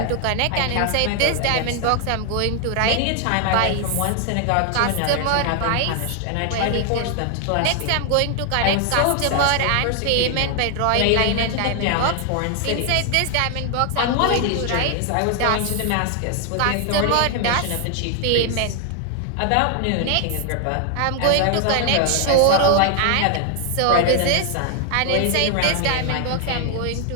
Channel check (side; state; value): both; different; correlation 0.00